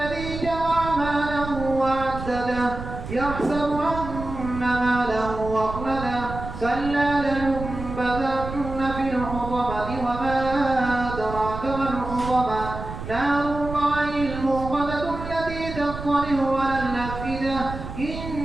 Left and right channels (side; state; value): right; noise; rumble, 9 dB below the sound